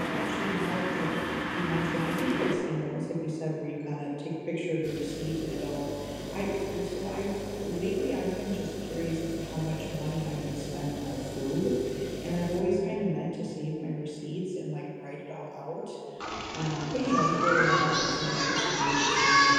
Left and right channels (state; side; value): identical; both; correlation 1.00